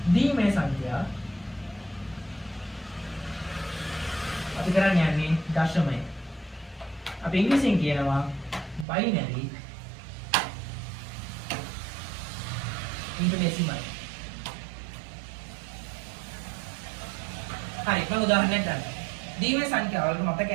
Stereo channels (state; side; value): drops out; left; at 8.8 s